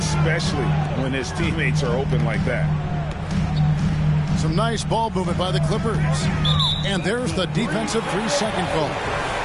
when his teammates are open like that. Some nice ball movement by the Clippers. And there's the defensive 3-second call.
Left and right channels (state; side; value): identical; both; correlation 1.00